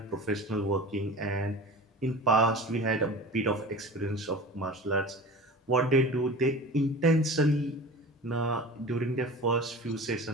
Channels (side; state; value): both; normal; correlation 0.36